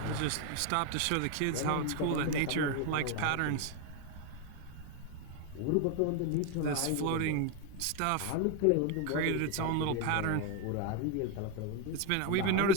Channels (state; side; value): different; both; correlation 0.01